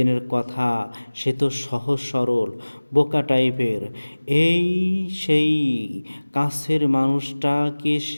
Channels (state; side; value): inverted; both; correlation -1.00